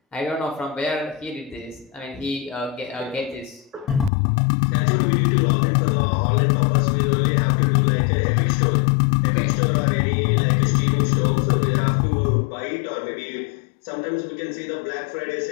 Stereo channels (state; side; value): drops out; right; at 4.1 s